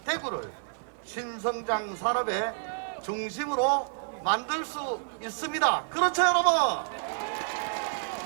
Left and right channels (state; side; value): silent; left; 58 dB below the other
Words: 대구를 신성장 산업의 중심으로 만들 수 있습니다. 그렇죠, 여러분?